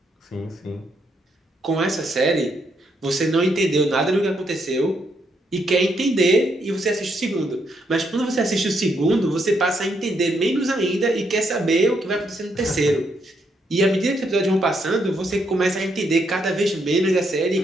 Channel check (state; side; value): normal; both; correlation 0.76